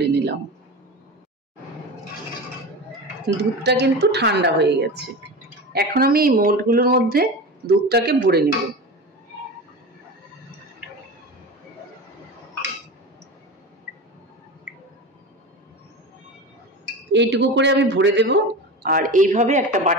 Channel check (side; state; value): both; normal; correlation 0.28